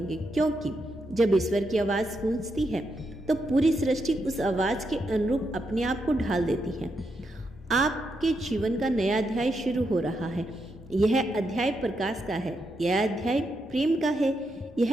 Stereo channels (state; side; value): normal; both; correlation 0.82